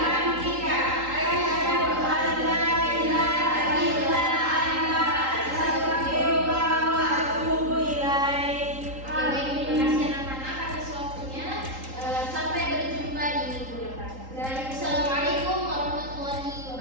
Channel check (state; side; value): late; left; 3.8 ms